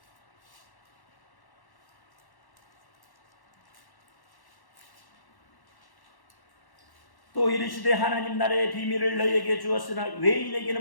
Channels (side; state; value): right; late; 1.1 ms